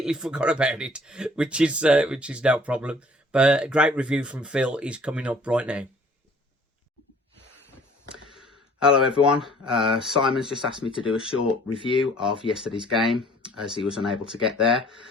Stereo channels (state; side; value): normal; both; correlation 0.55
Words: forgot about it, which is no problem. But a great review from Phil is coming up right now. Hello everyone, Simon's just asked me to do a short review of yesterday's game as he was unable to get there